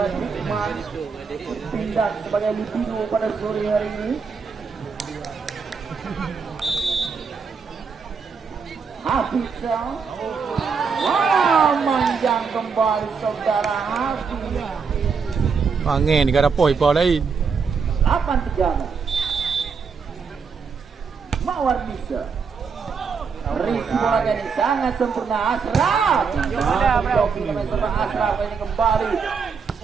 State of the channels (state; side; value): quieter; left; 5.6 dB